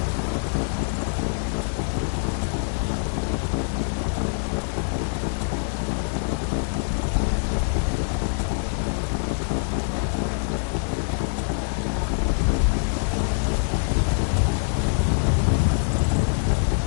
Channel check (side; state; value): right; silent; digital silence